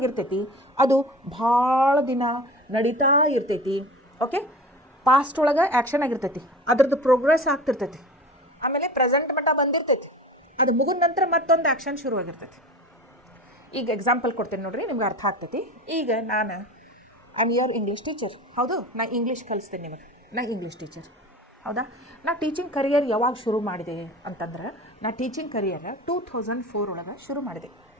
ಅದು ಭಾಳ ದಿನ ನಡೀತಾ ಇರ್ತೈತಿ. ಓಕೆ, ಪಾಸ್ಟ್ ಒಳಗೆ ಆ್ಯಕ್ಷನ್ ಆಗಿರ್ತೈತಿ, ಅದ್ರದ್ದು ಪ್ರೋಗ್ರೆಸ್ ಆಗ್ತಿರ್ತೈತಿ, ಆಮೇಲೆ ಪ್ರೆಸೆಂಟ್ ಮಟ್ಟ ಬಂದಿರ್ತೈತಿ, ಅದು ಮುಗಿದ ನಂತರ ಮತ್ತೊಂದು ಆ್ಯಕ್ಷನ್ ಶುರುವಾಗಿರ್ತೈತಿ. ಈಗ ಎಕ್ಸಾಂಪಲ್ ಕೊಡ್ತೇನೆ ನೋಡ್ರಿ, ನಿಮ್ಗೆ ಅರ್ಥ ಆಗ್ತೈತಿ. ಈಗ ನಾನು I am your English teacher. ಹೌದು, ನಾ ಇಂಗ್ಲೀಷ್ ಕಲಿಸ್ತೇನೆ ನಿಮಗೆ, ನಾ ಇಂಗ್ಲೀಷ್ ಟೀಚರ್. ಹೌದಾ, ನಾ ಟೀಚಿಂಗ್ ಕರಿಯರ್ ಯಾವಾಗ ಶುರು ಮಾಡಿದೆ ಅಂತಂದ್ರೆ ನಾ ಟೀಚಿಂಗ್ ಕರಿಯರ್ 2004 ಒಳಗೆ ಶುರು ಮಾಡಿದೆ.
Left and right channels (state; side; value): normal; both; correlation 0.35